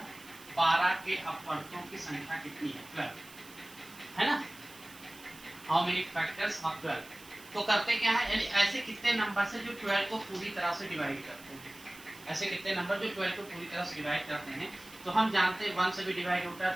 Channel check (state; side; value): noise; right; hiss, 19 dB below the sound